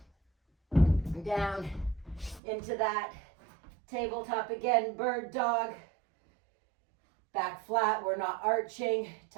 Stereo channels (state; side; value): drops out; left; at 2.4 s